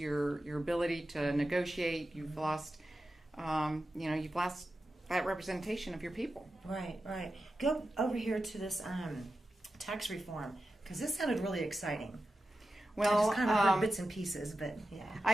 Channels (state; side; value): normal; both; correlation 0.92